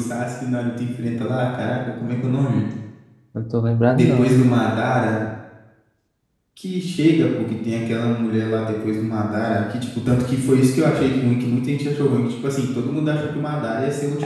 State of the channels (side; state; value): both; identical; correlation 1.00